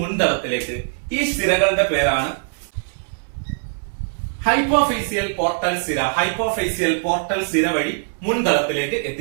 മുൻതളത്തിലേക്ക്. ഈ സിരകളുടെ പേരാണ് ഹൈപ്പോഫേസിയൽ പോർട്ടൽ സിര. ഹൈപ്പോഫേസിയൽ പോർട്ടൽ സിര വഴി മുൻതളത്തിലേക്ക്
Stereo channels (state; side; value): silent; left; 65 dB below the other